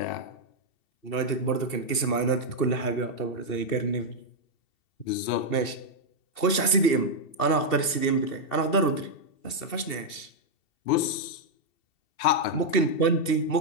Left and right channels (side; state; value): right; late; 2.7 ms